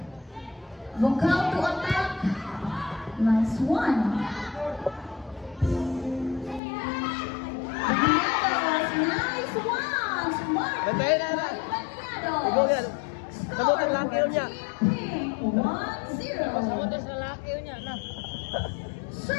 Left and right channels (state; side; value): drops out; right; at 6.6 s